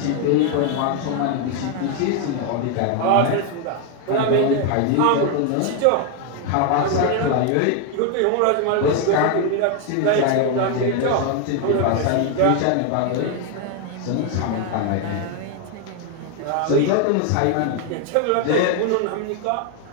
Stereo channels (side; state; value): both; different; correlation 0.01